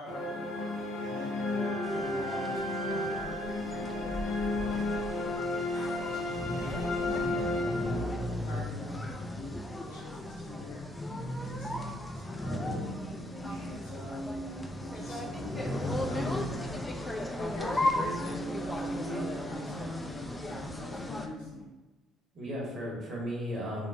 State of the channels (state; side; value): normal; both; correlation 0.71